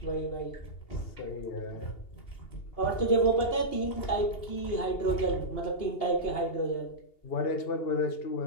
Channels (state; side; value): late; right; 2.8 ms